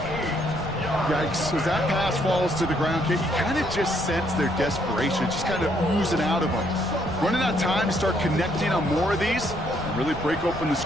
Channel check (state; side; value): noise; left; rumble, 13 dB below the sound